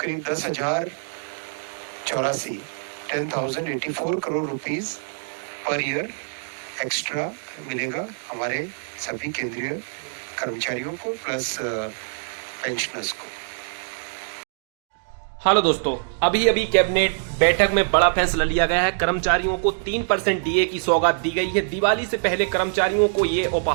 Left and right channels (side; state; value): left; silent; digital silence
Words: 10,084 crore rupees per year extra मिलेगा हमारे सभी केंद्रीय कर्मचारियों को प्लस पेंशनर्स को। हेलो दोस्तों, अभी कैबिनेट बैठक में बड़ा फैसला लिया गया है। कर्मचारियों को 3% डीए की सौगात दी गई है। दिवाली से पहले कर्मचारियों को ये